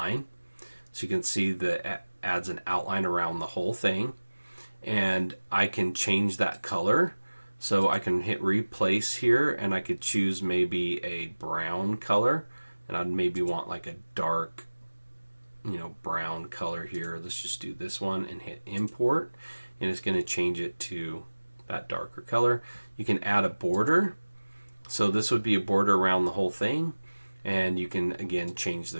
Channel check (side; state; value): both; inverted; correlation -1.00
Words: So you can see that it adds an outline around the whole thing. And I can change that color. So I can hit replace here, and I could choose maybe a brown color. And I'd maybe want like a dark, brown color here. Let's just do this one and hit import. And it's going to change it to that darker color. You can add a border. So this would be a border around the whole thing. And you can, again, change